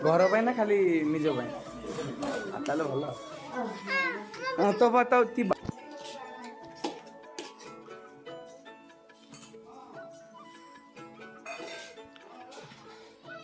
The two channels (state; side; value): identical; both; correlation 1.00